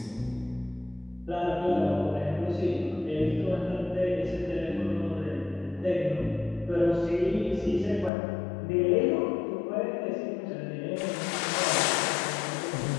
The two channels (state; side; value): drops out; right; at 8.1 s